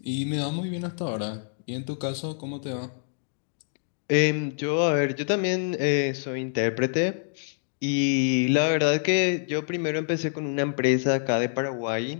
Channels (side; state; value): right; silent; digital silence